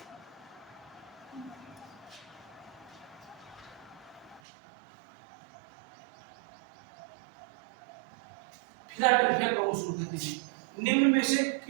फिलाडेल्फिया क्रोमोसोम कहते हैं। निम्न में से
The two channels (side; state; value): left; drops out; at 4.4 s